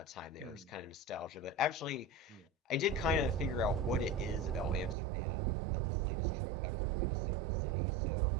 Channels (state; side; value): drops out; left; at 5.0 s